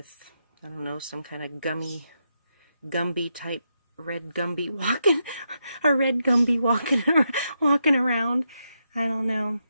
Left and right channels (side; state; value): both; inverted; correlation -0.83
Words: I don't know, some kind of Gumby type red Gumby walking, a red Gumby walking around. I don't know.